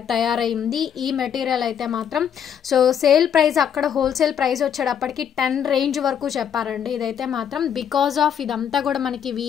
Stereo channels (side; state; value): right; quieter; 8.5 dB